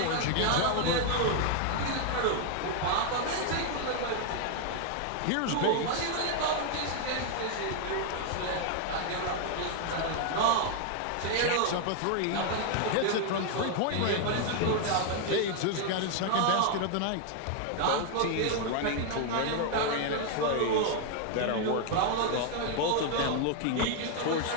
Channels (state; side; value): different; both; correlation 0.00